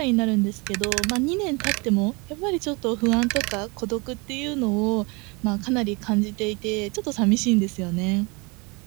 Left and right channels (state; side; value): quieter; left; 28.6 dB